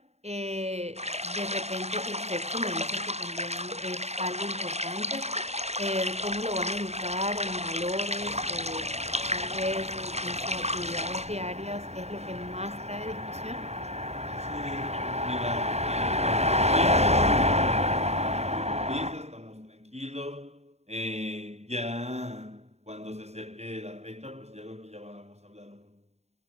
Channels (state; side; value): late; left; 0.31 ms